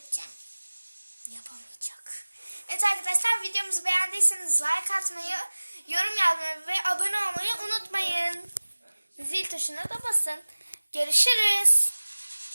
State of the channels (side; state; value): both; inverted; correlation -1.00